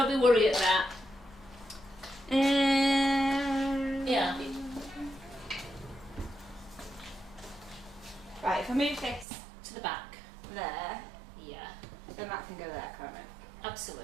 be worried at that. Yeah. Right, if I move this To the back. there, Yeah. then that can go there, can't it?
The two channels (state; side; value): drops out; left; at 9.2 s